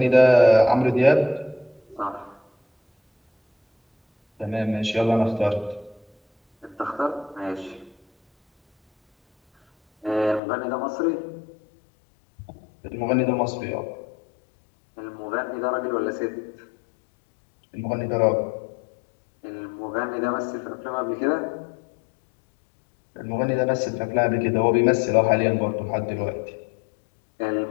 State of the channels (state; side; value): drops out; right; at 10.4 s